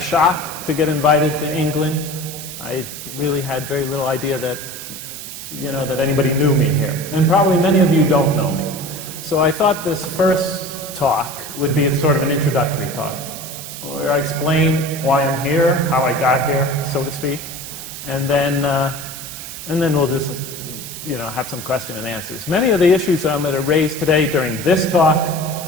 to get invited to England. I really had very little idea that, that anybody knew me here. And probably many of you don't know me. So I thought this first talk would be sort of an introductory talk, where I explain why I'm here, how I got here, so to speak, and then we'll just have some question and answers. Many of the issues I'm going to raise today during this talk,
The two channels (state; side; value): noise; right; hiss, 10 dB below the sound